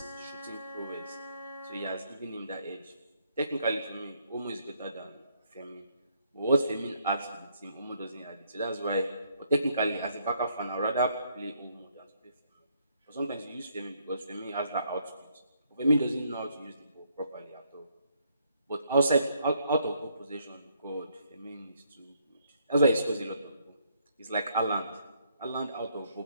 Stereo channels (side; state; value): both; inverted; correlation -0.71